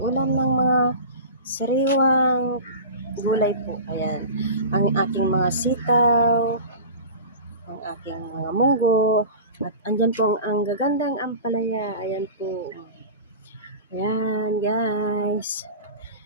ng mga sariwang gulay po. Ayan, ang aking mga sitaw, ang aking mga munggo, at andyan po ang gagandang ampalaya. Ayan po. Ayan guys.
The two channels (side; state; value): both; inverted; correlation -0.33